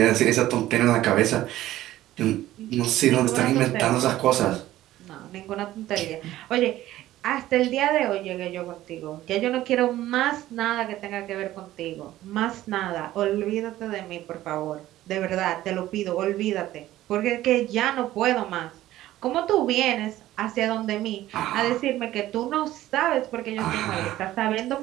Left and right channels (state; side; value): quieter; left; 14.7 dB